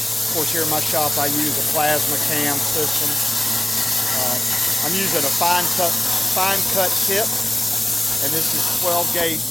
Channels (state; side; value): noise; left; rumble, 30 dB below the sound